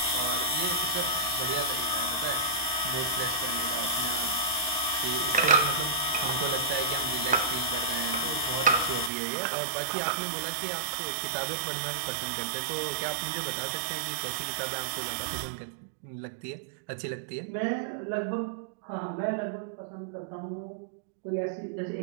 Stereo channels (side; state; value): left; drops out; at 9.1 s